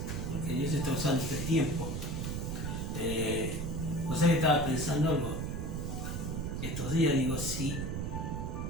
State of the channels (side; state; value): right; noise; rumble, 2 dB below the sound